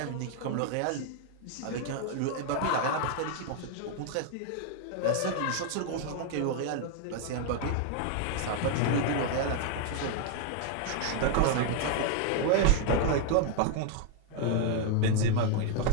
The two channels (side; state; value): both; different; correlation 0.00